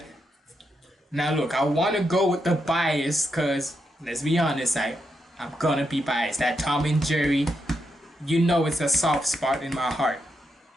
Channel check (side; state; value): both; normal; correlation 0.83